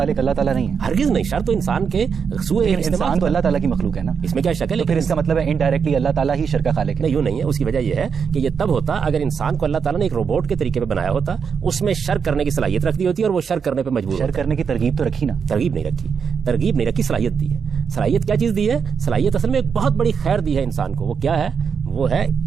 اللہ تعالیٰ نہیں ہے, ہرگز نہیں. شر تو انسان کے انسان تو اللہ تعالیٰ کی مخلوق ہے نا, اس میں کیا شک ہے؟ پھر اس کا مطلب ہے انڈائریکٹلی اللہ تعالیٰ ہی شر کا خالق ہے. نہیں, یوں نہیں ہے. اس کی وجہ یہ ہے کہ یہ تب ہوتا اگر انسان کو اللہ تعالیٰ نے ایک روبوٹ کے طریقے پہ بنایا ہوتا, اس میں شر کرنے کی صلاحیت رکھ دی ہوتی اور وہ شر کرنے پہ مجبور. شر کرنے کی ترغیب تو رکھی نا؟ ترغیب نہیں رکھی, صلاحیت دی ہے. صلاحیت کیا چیز دی ہے؟ صلاحیت اصل میں ایک بہت بڑی خیر دی ہے انسان کو. وہ کیا ہے؟ وہ ہے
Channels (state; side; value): quieter; left; 6.4 dB